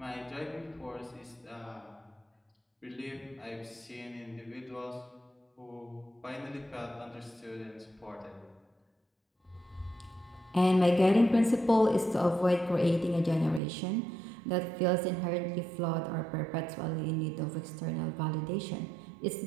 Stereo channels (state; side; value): drops out; left; at 13.6 s